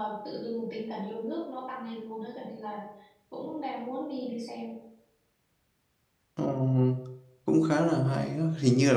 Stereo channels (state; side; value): identical; both; correlation 1.00